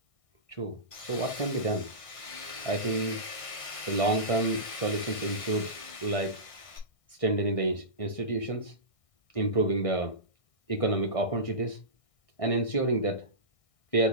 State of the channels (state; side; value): late; right; 1.6 ms